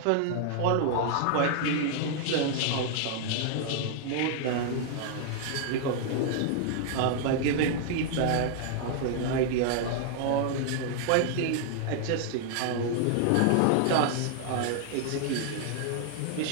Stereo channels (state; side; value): different; both; correlation -0.01